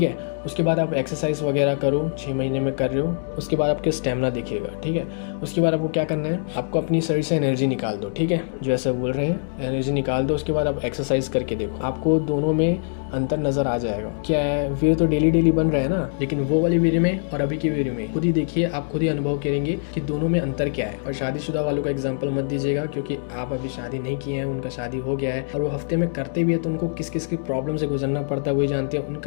है। उसके बाद आप एक्सरसाइज वगैरह करो, 6 महीने में कर रहे हो, उसके बाद आपके स्टेमिना दिखेगा, ठीक है। उसके बाद आपको क्या करना है, आपको अपनी शरीर से एनर्जी निकाल दो, ठीक है, जो ऐसा बोल रहे हैं एनर्जी निकाल दो। उसके बाद आप एक्सरसाइज करके देखो, आपको दोनों में अंतर नजर आ जाएगा। क्या है, वीर्य तो डेली बन रहा है ना, लेकिन वो वाले वीर्य में और अभी के वीर्य में खुद ही देखिए, आप खुद ही अनुभव करेंगे कि दोनों में अंतर क्या है। और शादीशुदा वालों का एग्जाम्पल मत दीजिएगा, क्योंकि आप अभी शादी नहीं किए हैं, उनका शादी हो गया है और वो हफ्ते में करते भी है, तो उनको किस किस की प्रॉब्लम से गुजरना पड़ता है वही जानते हैं।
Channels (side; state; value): right; silent; digital silence